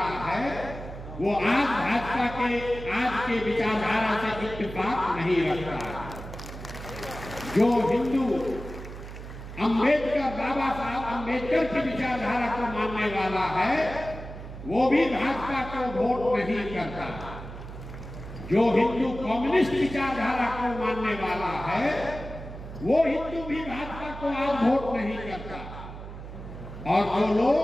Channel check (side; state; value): right; noise; hum, 11 dB below the sound